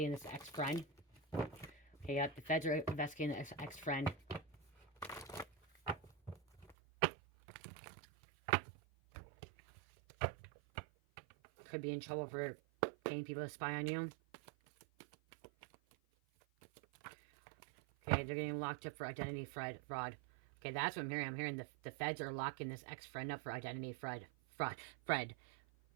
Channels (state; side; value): drops out; left; at 6.8 s